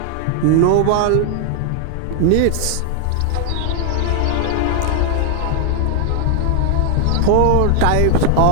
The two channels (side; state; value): both; different; correlation 0.00